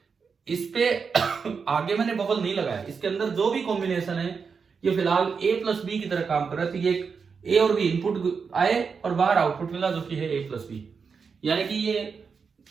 इस पे आगे मैंने बबल नहीं लगाया। इसके अंदर जो भी कॉम्बिनेशन है ये फिलहाल ए प्लस बी की तरह काम कर रहा है। तो ये ए और बी इनपुट आए और बाहर आउटपुट मिला जो कि है ए प्लस बी। यानी कि ये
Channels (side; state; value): left; quieter; 5.6 dB